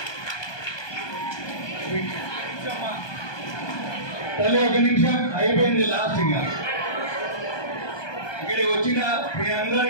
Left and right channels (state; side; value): late; right; 1.2 ms